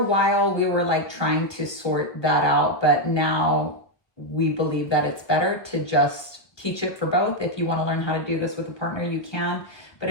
while we were like trying to sort that out, but now we believe that it's better to just teach it for both. If you want to learn how to do this with a partner, you can. But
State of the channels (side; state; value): right; late; 1.0 ms